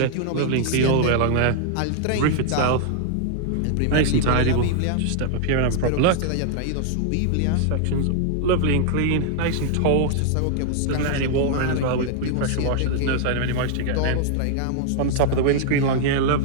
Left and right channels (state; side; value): different; both; correlation -0.01